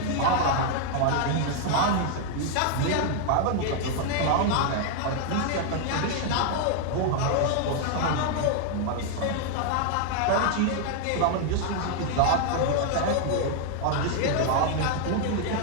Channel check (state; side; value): different; both; correlation 0.00